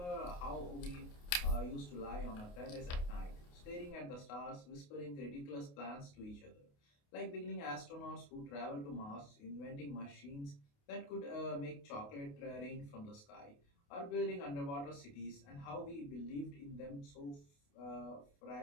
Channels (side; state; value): right; late; 28 ms